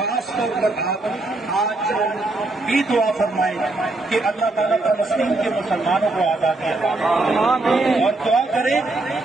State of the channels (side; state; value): left; quieter; 3.0 dB